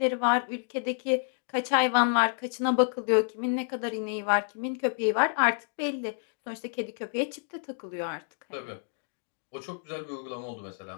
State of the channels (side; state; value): right; silent; digital silence